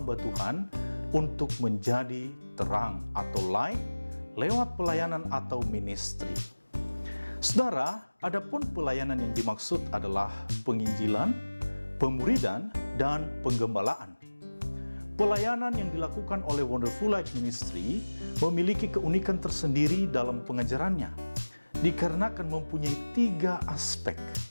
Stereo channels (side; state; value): both; inverted; correlation -1.00